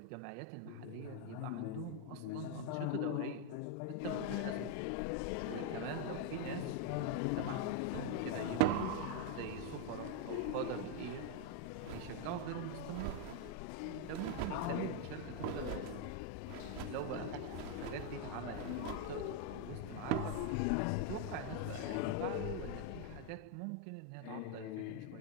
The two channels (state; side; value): different; both; correlation 0.01